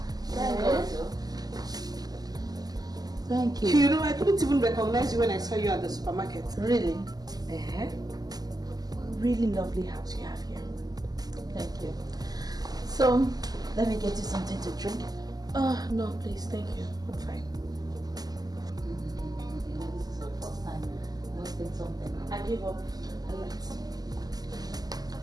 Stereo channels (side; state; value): left; late; 0.19 ms